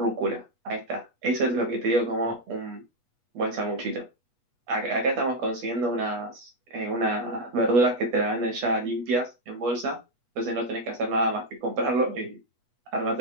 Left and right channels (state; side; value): late; left; 8.3 ms